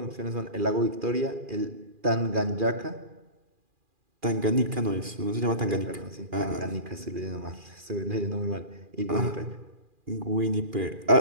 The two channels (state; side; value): late; left; 2.4 ms